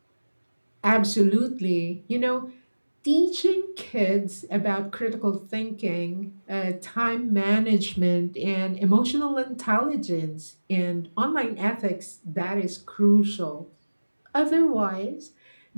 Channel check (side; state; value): both; inverted; correlation -1.00